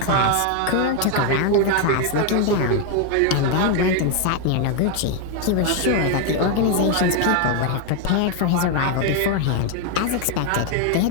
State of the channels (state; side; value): different; both; correlation 0.01